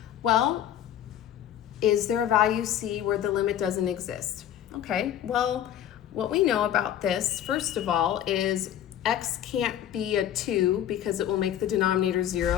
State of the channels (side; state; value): right; quieter; 10.9 dB